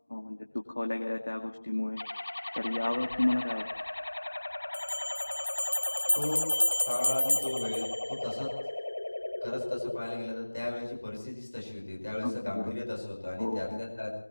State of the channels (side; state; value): both; inverted; correlation -1.00